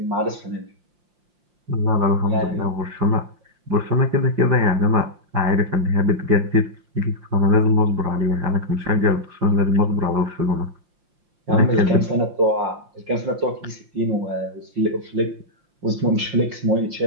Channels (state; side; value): late; left; 5.7 ms